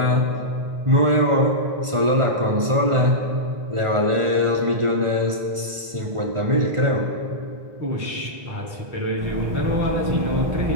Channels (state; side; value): late; left; 1.4 ms